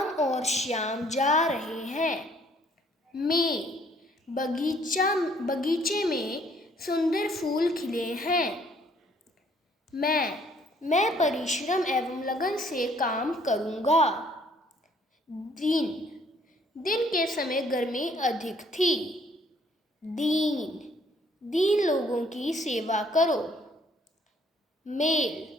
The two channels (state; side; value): normal; both; correlation 0.62